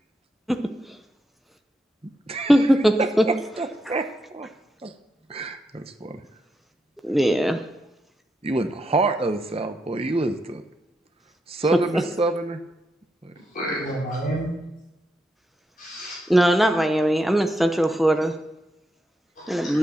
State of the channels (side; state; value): both; normal; correlation 0.83